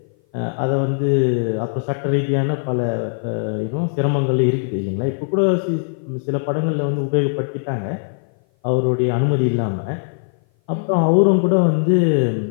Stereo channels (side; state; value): right; silent; 57 dB below the other